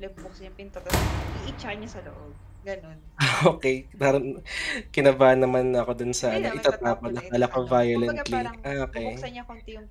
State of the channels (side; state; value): both; identical; correlation 1.00